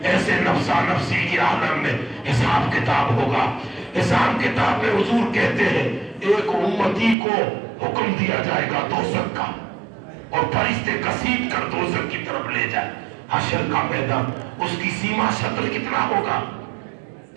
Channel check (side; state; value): left; drops out; at 7.2 s